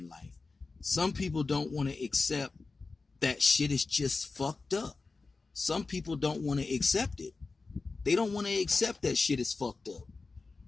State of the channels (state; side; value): quieter; right; 4.0 dB